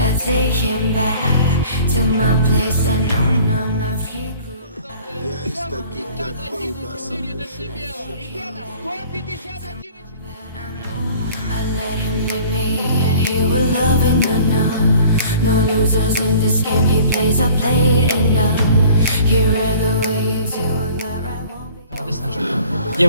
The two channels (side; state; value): both; inverted; correlation -0.50